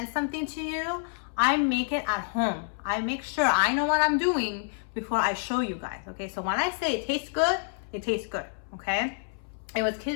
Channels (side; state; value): right; silent; 59 dB below the other